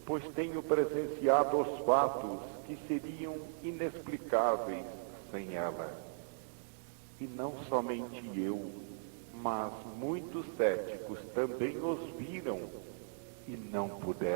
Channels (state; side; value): silent; left; digital silence